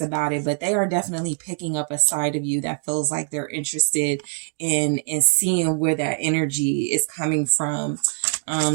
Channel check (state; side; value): silent; left; 57 dB below the other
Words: it, but they are definitely picking up a side of you that feels like they're interested in seeing where that energy is coming from.